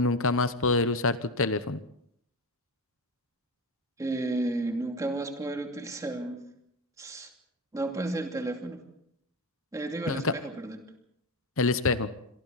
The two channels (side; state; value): both; normal; correlation 0.17